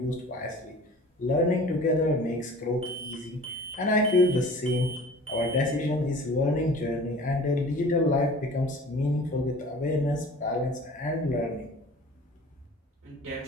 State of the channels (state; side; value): normal; both; correlation 0.44